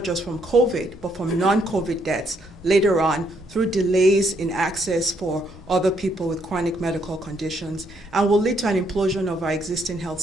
just from COVID, but from non-COVID deaths later on through delays in access for other people with chronic medical conditions, and will lead to an implosion of our existing health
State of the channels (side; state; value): both; normal; correlation 0.72